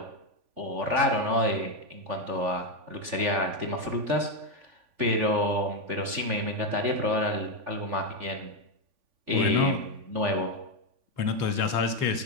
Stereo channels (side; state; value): left; late; 3.5 ms